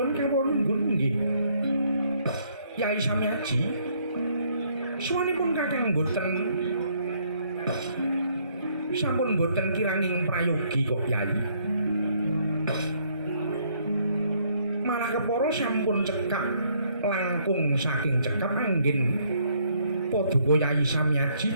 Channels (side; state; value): both; inverted; correlation -0.67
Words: kawulunggun nggih Yai Samyaji suwanipun kakang boten sampun boten kiranging prayogi kok Yai malah kepara sampun cekap langkung saking cekap anggen paduka Yai